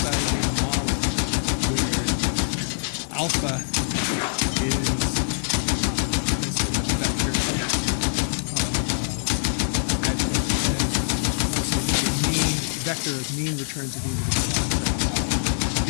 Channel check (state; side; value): silent; right; digital silence